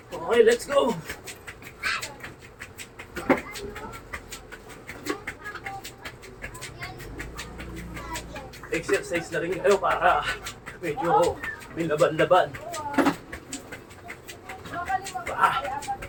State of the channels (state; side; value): identical; both; correlation 1.00